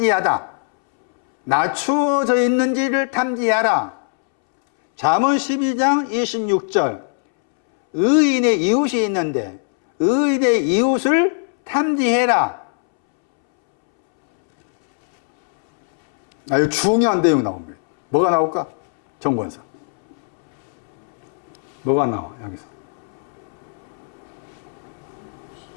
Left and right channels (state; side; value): silent; right; 66 dB below the other